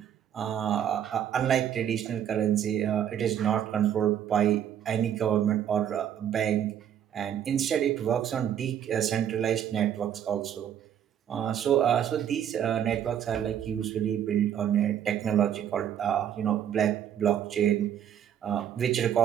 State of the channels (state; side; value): quieter; left; 9.8 dB